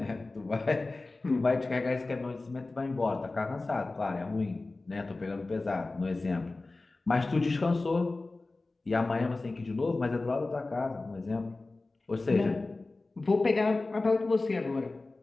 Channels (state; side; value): quieter; right; 3.3 dB